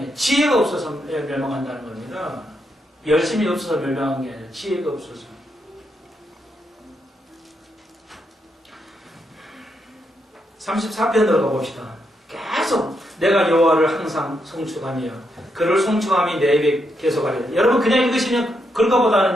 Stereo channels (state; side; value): normal; both; correlation 0.80